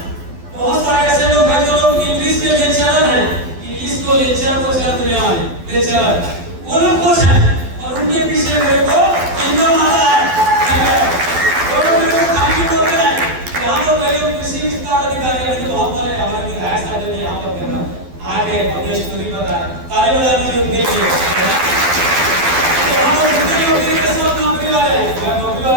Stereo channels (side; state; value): left; late; 12 ms